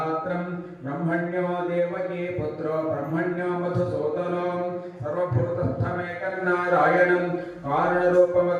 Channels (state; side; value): identical; both; correlation 1.00